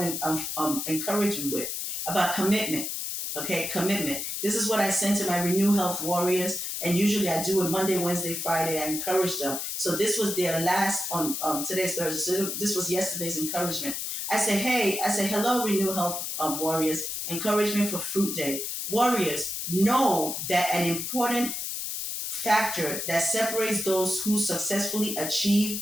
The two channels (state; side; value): noise; left; hiss, 4 dB below the sound